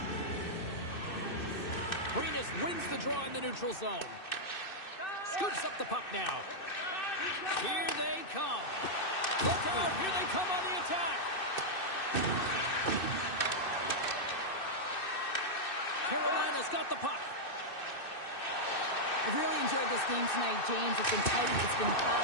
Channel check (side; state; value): right; late; 2.6 ms